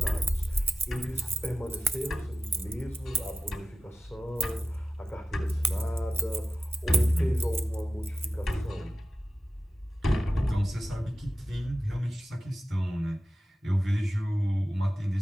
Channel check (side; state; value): both; normal; correlation 0.93